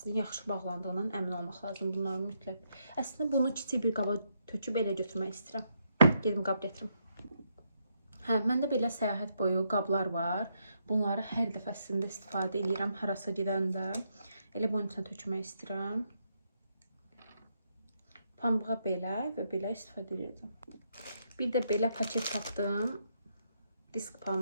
yaxşı bağlandığından əmin olmaq lazım bunların mütləq. Əslində bunu kiçik bir qaba töküb elə götürmək istəyirəm. Gedim qab gətirim. Hə, məndə belə səyahət boyu qablar var. Bunları hər dəfəsində istifadə edirəm harasa gedəndə. Elə bunun üçün tökmək istəyirəm. Pambığa belə və belə istifadə edirəm. Bir də belə paket tapdım. Disk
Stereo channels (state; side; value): inverted; both; correlation -0.78